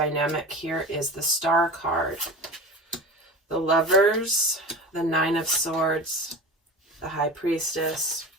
here is the Star card. The Lovers, the 9 of Swords, the High Priestess,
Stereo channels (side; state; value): both; normal; correlation 0.33